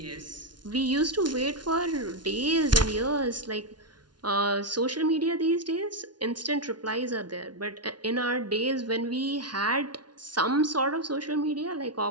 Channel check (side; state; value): left; late; 0.70 ms